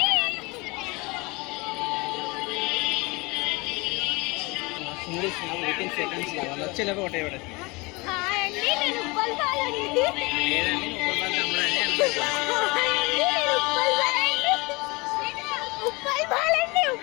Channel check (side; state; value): right; quieter; 26.0 dB